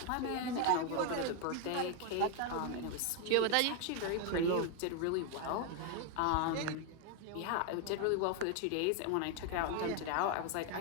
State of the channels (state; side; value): different; both; correlation 0.01